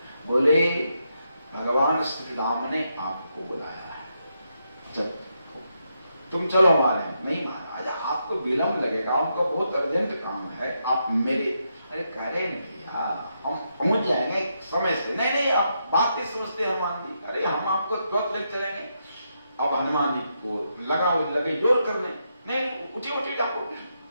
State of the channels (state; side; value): inverted; both; correlation -0.82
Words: बोले भगवान श्री राम ने आपको बुलाया है, जब तुम चलो हमारे। नहीं महाराज आपको विलंब लगेगा, उनको बहुत अर्जेंट काम है, आप मेरे। अरे कह रहे नहीं भैया हम पहुंच जाएंगे समय से। नहीं नहीं आप बात नहीं समझते हनुमान जी, अरे हम आपको तुरंत ले चलेंगे। अब हनुमान जी को लगे जोर करने, नहीं उठिए उठिए जाओ।